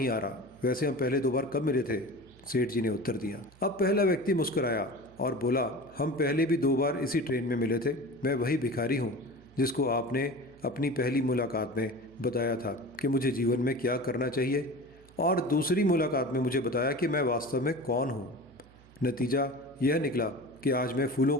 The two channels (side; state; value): right; noise; hum, 26 dB below the sound